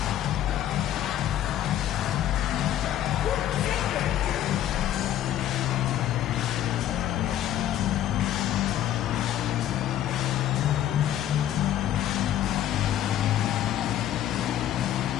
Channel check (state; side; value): quieter; right; 11.8 dB